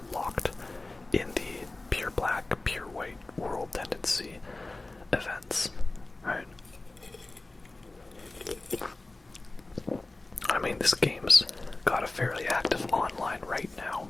locked in the pure black, pure white world tendency events, right? I mean, this game's got a fairly active online right now.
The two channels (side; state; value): right; quieter; 3.0 dB